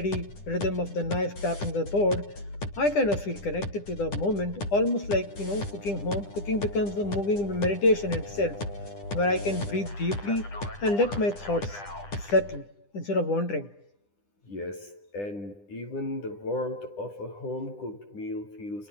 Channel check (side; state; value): right; late; 10 ms